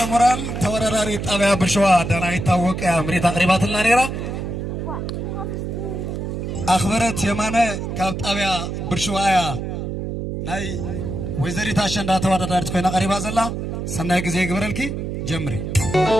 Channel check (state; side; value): noise; right; hum, 4 dB below the sound